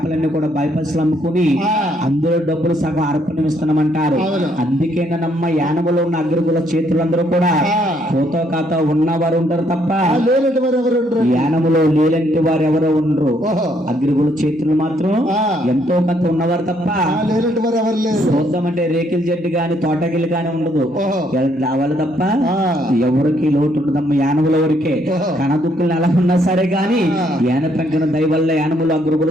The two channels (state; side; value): normal; both; correlation 0.70